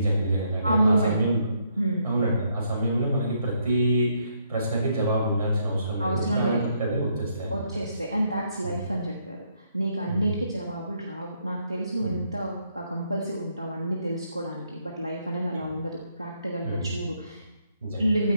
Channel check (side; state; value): both; inverted; correlation -0.74